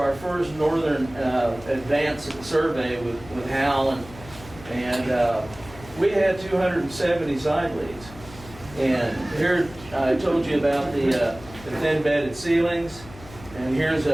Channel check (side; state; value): left; noise; hum, 18 dB below the sound